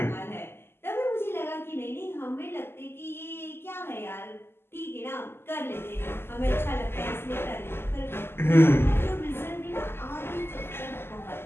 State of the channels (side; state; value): right; late; 0.12 ms